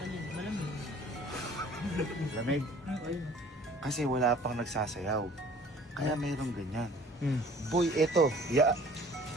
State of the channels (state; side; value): normal; both; correlation 0.51